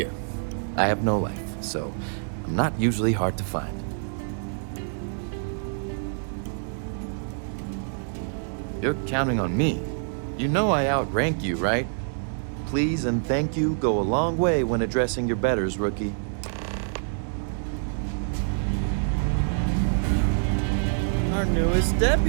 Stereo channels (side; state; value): left; silent; 61 dB below the other